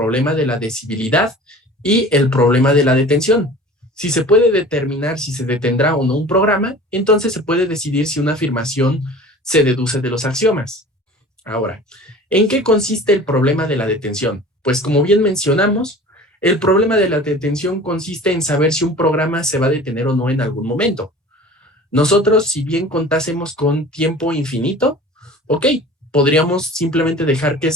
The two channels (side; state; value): both; normal; correlation 0.42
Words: de la decibilidad y el problema de la detención. Si se puede determinar si se detendrá o no un programa, entonces se puede decidir si una afirmación se deduce de los axiomas. Ahora, ¿en qué consiste el problema de la detención? Pues como bien mencionamos, el problema de la detención consiste en saber si un programa se va a detener o no en algún momento. Nosotros, si bien contásemos con tiempo infinito, ok, podríamos simplemente dejar que